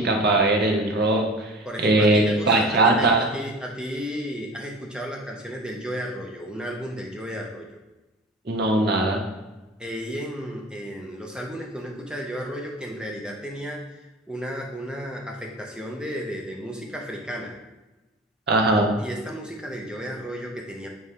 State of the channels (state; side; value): normal; both; correlation 0.37